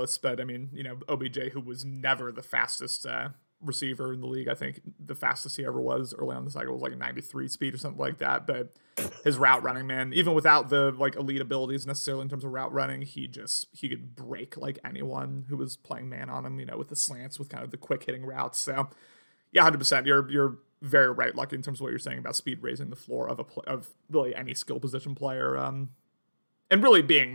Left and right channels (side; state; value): both; inverted; correlation -1.00